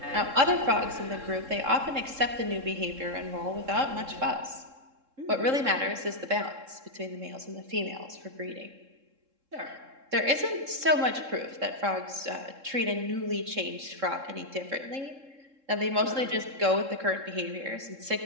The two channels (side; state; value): left; late; 3.7 ms